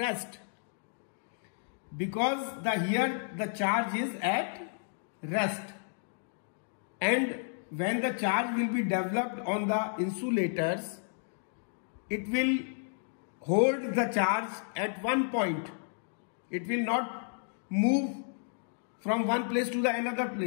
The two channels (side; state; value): right; silent; digital silence